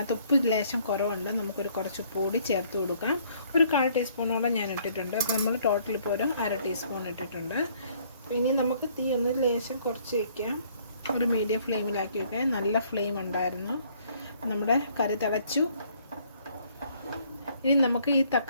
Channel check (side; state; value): both; inverted; correlation -0.63